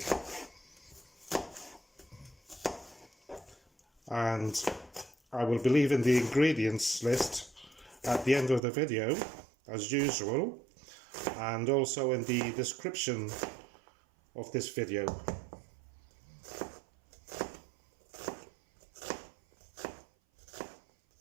And I will be leaving the ingredients list at the end of the video, as usual, and also in the description of this video.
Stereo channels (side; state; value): left; drops out; at 8.6 s